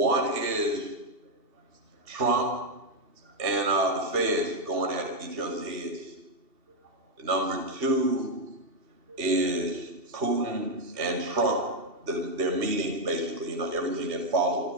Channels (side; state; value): left; late; 2.7 ms